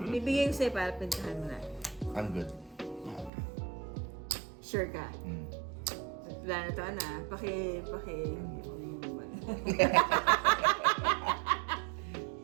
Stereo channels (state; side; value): drops out; left; at 3.3 s